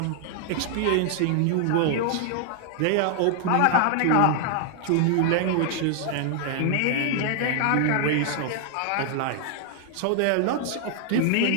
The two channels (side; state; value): both; different; correlation 0.00